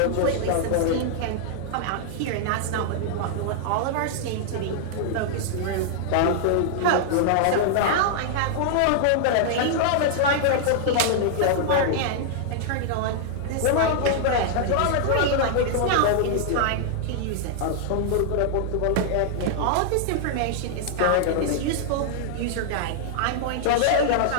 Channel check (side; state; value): both; different; correlation -0.01